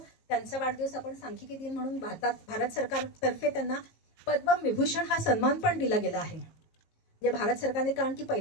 त्यांचा वाढदिवस आपण सांख्यिकी दिन म्हणून भारत सरकारतर्फे त्यांना पद्मविभूषण हा सन्मान पण दिला गेला आहे. जे भारत सरकारने, कारण की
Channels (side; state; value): right; late; 19 ms